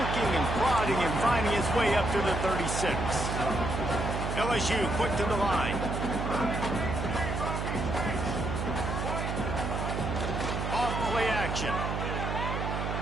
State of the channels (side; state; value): right; noise; hum, 2 dB below the sound